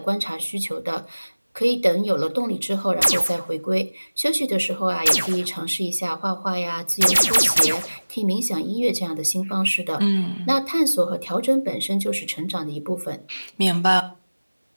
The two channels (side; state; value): both; inverted; correlation -1.00